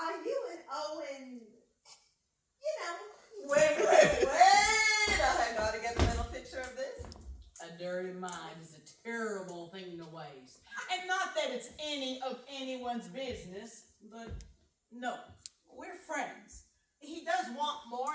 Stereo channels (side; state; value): both; identical; correlation 1.00